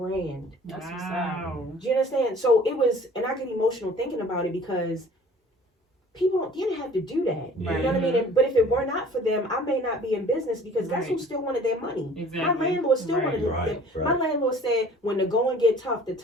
That's what's up. Wow. Do you understand? So it was, and I get emotional thinking about it because people didn't have to do that. Yeah. You know what I mean? But if it were not for them, I may not be in business because guess who Right. still wanted their money? Exactly. My landlord still Right. wanted their Right, My right. landlord said, when the going get tough, the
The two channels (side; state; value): both; normal; correlation 0.50